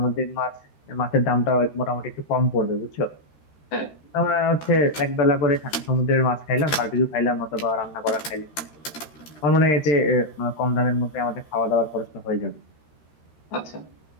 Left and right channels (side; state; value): right; late; 13 ms